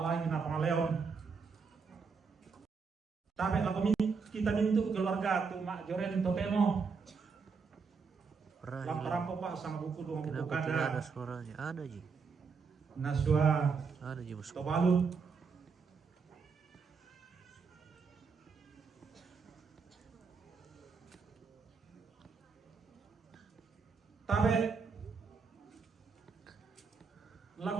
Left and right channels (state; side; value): quieter; left; 5.3 dB